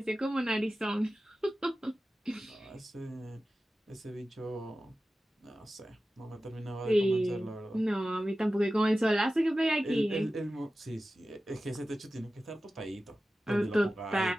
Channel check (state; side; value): normal; both; correlation 0.95